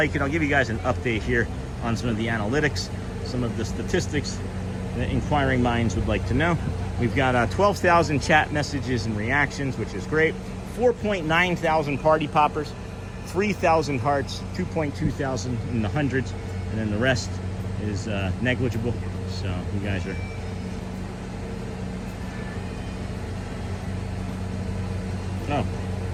and I'll give you guys an update here on some of the analytics, some of the statistics that inquiring minds would like to know. We've got 12,000 chat messages and reactions, which is great. 4.9 thousand party poppers, 3,000 hearts, 2.2 thousand in the hundreds, and then the rest is negligible. So you guys are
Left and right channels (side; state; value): both; identical; correlation 1.00